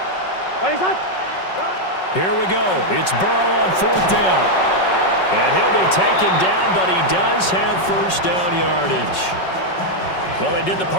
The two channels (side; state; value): right; late; 5.4 ms